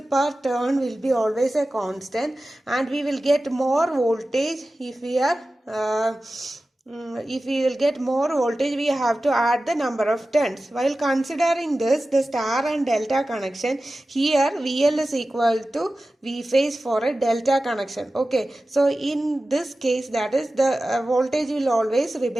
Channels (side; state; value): both; normal; correlation 0.95